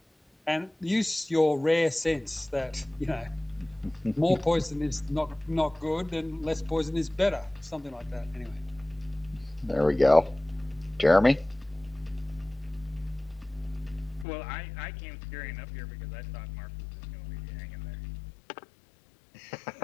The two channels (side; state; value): right; drops out; at 14.2 s